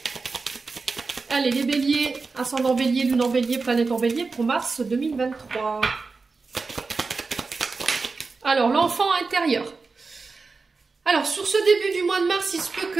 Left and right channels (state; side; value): quieter; left; 4.2 dB